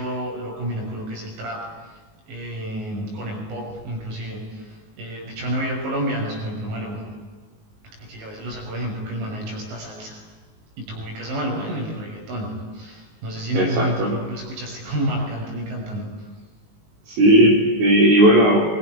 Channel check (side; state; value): left; late; 19 ms